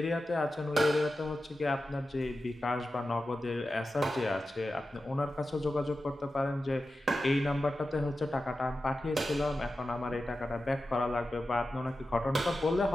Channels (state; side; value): normal; both; correlation 0.92